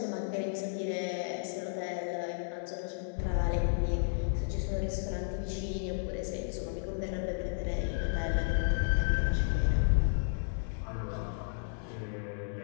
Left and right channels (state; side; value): silent; right; digital silence